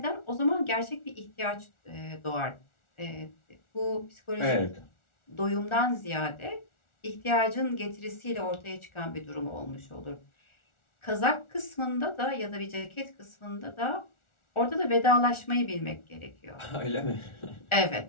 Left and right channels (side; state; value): right; late; 1.4 ms